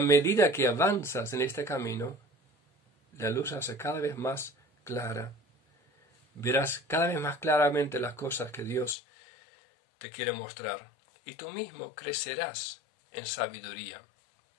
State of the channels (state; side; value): drops out; right; at 9.0 s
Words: que avanzas en este camino, la luz se hace cada vez más clara. Verás cada vez más claramente las cosas que Dios te quiere mostrar. Y tú mismo crecerás en sabiduría.